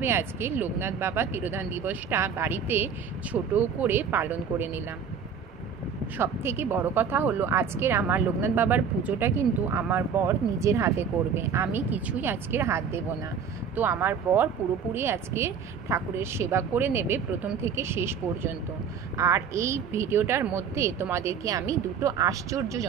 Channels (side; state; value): left; quieter; 6.7 dB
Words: আজকে লোকনাথ বাবা তিরোধান দিবসটা বাড়িতে ছোট করে পালন করে নিলাম। সব থেকে বড় কথা হলো আজকের আমার লোকনাথ বাবার পুজোটা কিন্তু আমার বর নিজের হাতে করবে, আমি কিছুই আজকের হাত দেব না। তো আমার বর পুরোপুরি আজকে ঠাকুরের সেবা করে নেবে প্রথম থেকে শেষ পর্যন্ত। আর এই ভিডিওটার মধ্যে তোমাদেরকে আমি দুটো